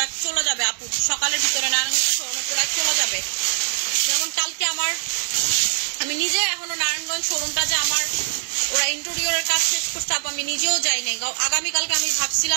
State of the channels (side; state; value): left; silent; 56 dB below the other